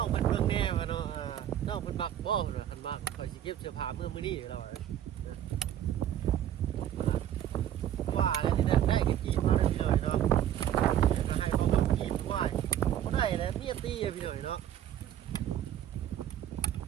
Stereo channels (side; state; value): left; quieter; 11.0 dB